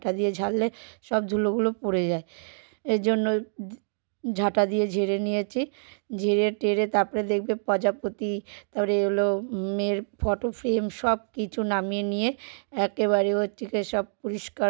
দিয়ে ঝাড়লে সব ধুলোগুলো পড়ে যায়। এর জন্য ঝাঁটা দিয়ে ঝেড়ে নিয়েছি। ঝেড়ে টেরে তারপরে দেখবে প্রজাপতি, তারপরে হলো মেয়ের ফটো ফ্রেম, সব কিছু নামিয়ে নিয়ে একেবারে হচ্ছে সব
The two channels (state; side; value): silent; left; digital silence